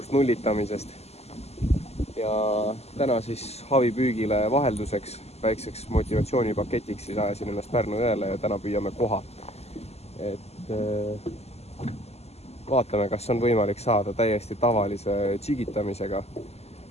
nullitamisest. Ja täna siis haavipüügile vahelduseks, väikseks motivatsioonipaketiks siis ajasin ennast Pärnu jõele ja täna püüame koha. Vaatame, kas on võimalik saada täiesti tavalise tšigitamisega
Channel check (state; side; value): late; right; 0.30 ms